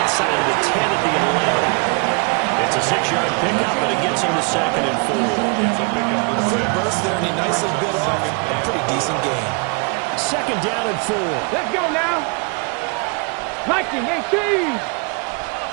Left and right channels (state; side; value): quieter; left; 33.8 dB